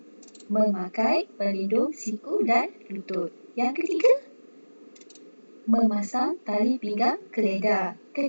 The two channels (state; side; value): inverted; both; correlation -1.00